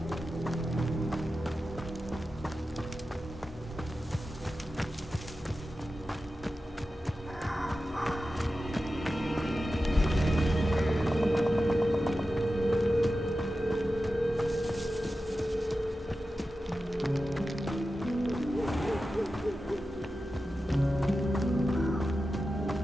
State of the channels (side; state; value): both; normal; correlation 0.93